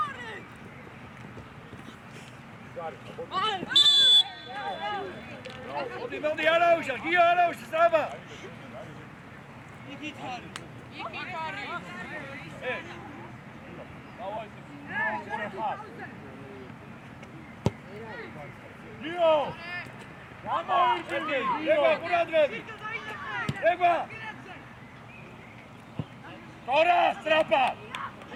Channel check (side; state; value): both; identical; correlation 1.00